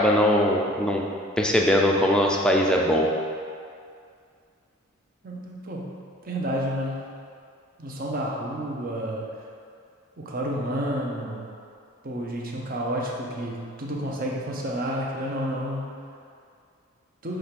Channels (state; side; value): normal; both; correlation 0.50